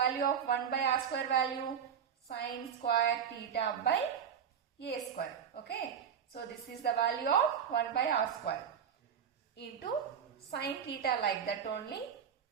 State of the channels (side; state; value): left; quieter; 7.9 dB